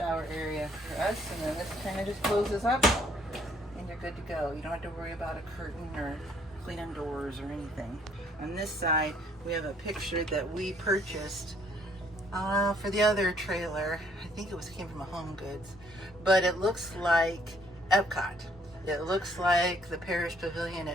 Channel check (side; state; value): both; normal; correlation 0.64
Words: area for us. And then this kind of just closes up, and you're good to go. You don't have to worry about a curtain or cleaning doors or anything. On this side, we have a picture that we purchased for the other trailer. I think it came from a Home Goods, but it looks like Epcot. It looks like the Parish Pavilion